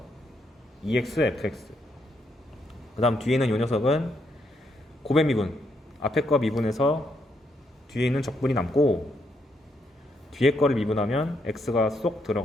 2x, fx. 그 다음 뒤에 있는 이 녀석은 고배 미분. 앞에 거 미분해서 뒤에 있는 적분이 남고 뒤에 거를 미분하면 x가 쏙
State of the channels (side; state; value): both; normal; correlation 0.76